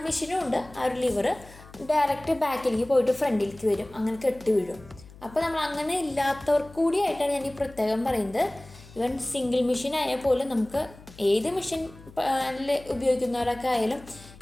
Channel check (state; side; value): noise; left; hum, 21 dB below the sound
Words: മെഷീനും ഉണ്ട്. ആ ഒരു ലിവർ ഡയറക്റ്റ് ബാക്കിലേക്ക് പോയിട്ട് ഫ്രണ്ടിലേക്ക് വരും, അങ്ങനെ കെട്ടി വീഴും. അപ്പോൾ നമ്മൾ അങ്ങനെ ഇല്ലാത്തവർക്ക് കൂടിയായിട്ടാണ് ഞാൻ ഈ പ്രത്യേകം പറയുന്നത്. സിംഗിൾ മെഷീൻ ആയാൽ പോലും നമുക്ക് ഏത് മെഷീൻ ഉപയോഗിക്കുന്നവരൊക്കെ ആയാലും